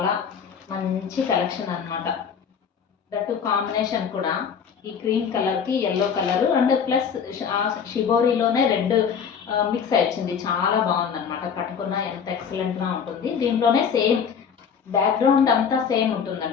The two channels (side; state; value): right; quieter; 7.0 dB